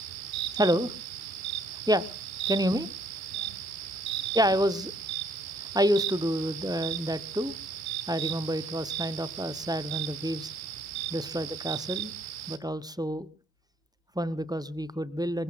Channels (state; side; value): normal; both; correlation 0.66